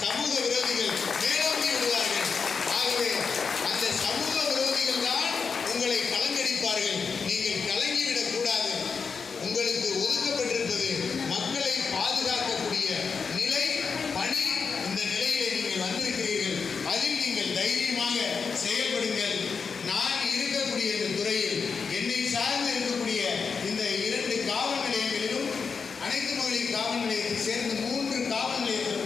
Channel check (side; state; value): right; quieter; 5.5 dB